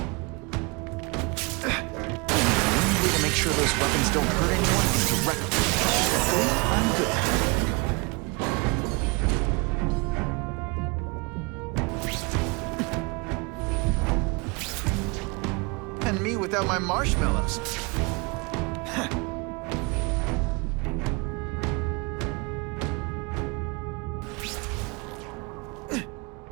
Make sure those weapons don't hurt anyone directly. I'm good. And me without my marshmallows.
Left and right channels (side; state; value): left; quieter; 29.2 dB